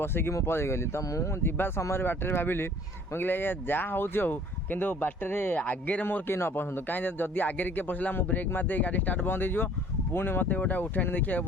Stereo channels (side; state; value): both; normal; correlation 0.54